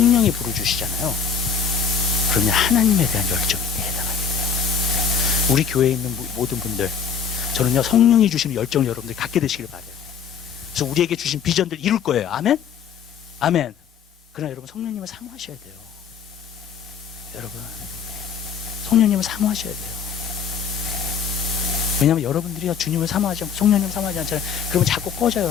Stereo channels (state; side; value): quieter; right; 6.6 dB